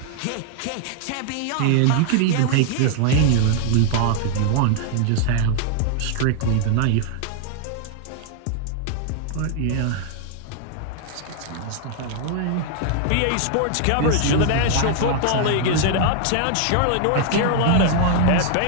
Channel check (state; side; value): different; both; correlation 0.00